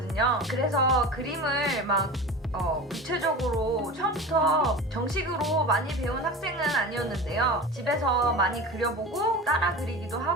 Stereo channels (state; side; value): normal; both; correlation 0.31